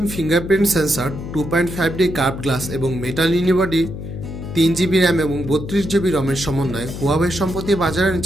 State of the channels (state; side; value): noise; left; hum, 9 dB below the sound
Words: fingerprint sensor 2.5D curve glass এবং metal unibody 3GB RAM এবং 32GB রমের সমন্বয়ে Huawei সম্প্রতি বাজারে